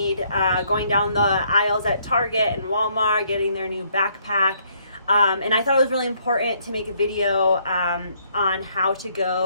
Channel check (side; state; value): both; inverted; correlation -0.69